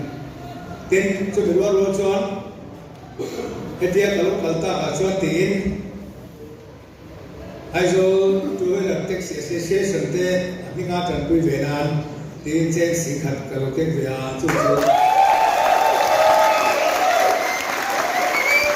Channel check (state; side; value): identical; both; correlation 1.00